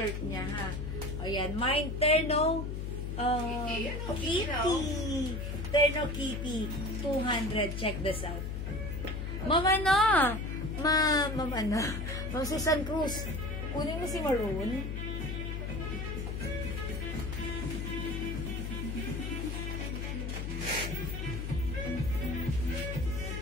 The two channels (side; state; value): left; noise; hum, 4 dB below the sound